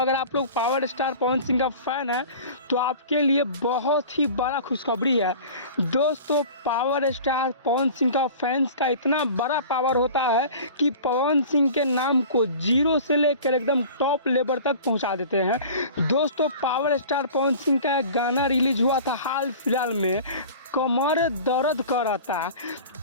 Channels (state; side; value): inverted; both; correlation -0.40